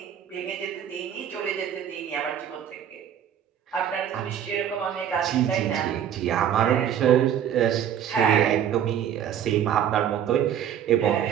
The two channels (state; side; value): quieter; left; 9.6 dB